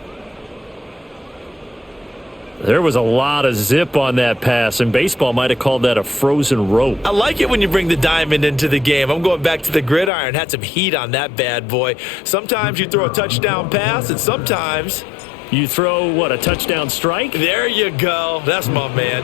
There was a lot of zip on that pass, and baseball might have called that a frozen rope. I like it when you bring the diamond into the game. I'm going back to the gridiron. Had some heat on that bad boy. Sometimes you throw a touchdown pass, and sometimes you throw, what, a touchdown strike? There you go. That's my man,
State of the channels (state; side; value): drops out; right; at 10.1 s